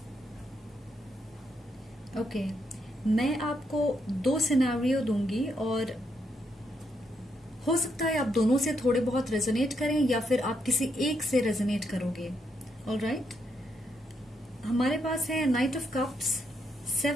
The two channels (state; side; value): normal; both; correlation 0.78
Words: ओके, मैं आपको 2 सिनेरियो दूंगी और हो सकता है आप दोनों से थोड़े बहुत रेजोनेट करें या फिर आप किसी एक से रेजोनेट करोगे। ऑलराइट, हमारे पास है night of cups,